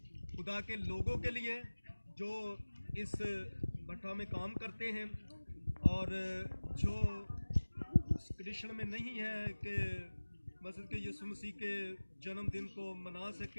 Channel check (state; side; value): inverted; both; correlation -1.00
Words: खुदा के लोगों के लिए जो इस भट्टा में काम करते हैं और जो कृष्ण में नहीं है कि मसीह के यीशु मसीह के जन्मदिन को मना